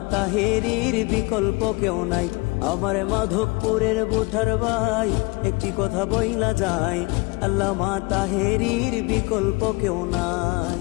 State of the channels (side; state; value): right; quieter; 26.6 dB